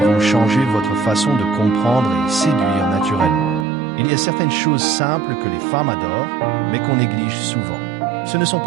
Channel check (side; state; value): left; drops out; at 3.7 s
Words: changer votre façon de comprendre et séduire naturellement. Il y a certaines choses simples que les femmes adorent, mais qu'on néglige souvent. Ce ne sont